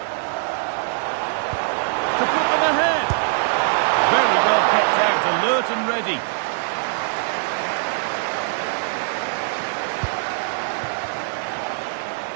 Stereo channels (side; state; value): left; silent; 64 dB below the other